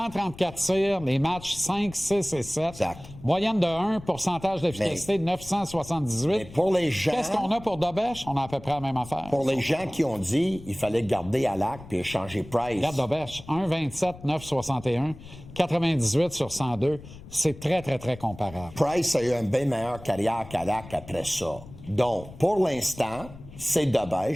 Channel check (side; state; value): left; noise; rumble, 17 dB below the sound